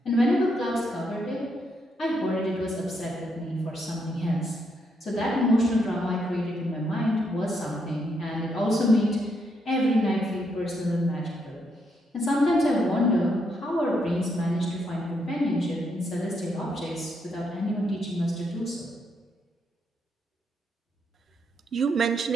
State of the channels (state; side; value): normal; both; correlation 0.77